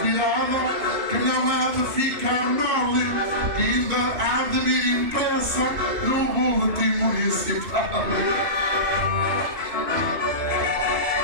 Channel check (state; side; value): late; left; 2.8 ms